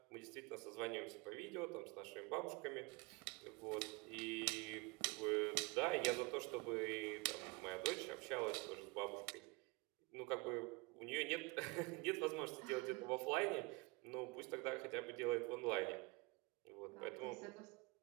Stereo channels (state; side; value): quieter; left; 26.0 dB